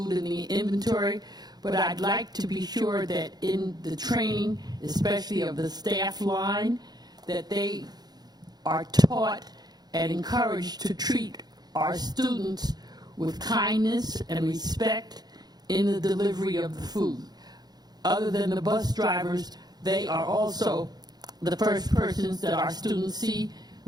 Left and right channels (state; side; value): late; left; 0.19 ms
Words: and the inventory, but I'd like to be sure that in the training, especially of the staff line, that they are taught and encouraged to treat our students with kindness and respect in the delivery of the food. Other than the bus drivers, they are also the first persons that our students see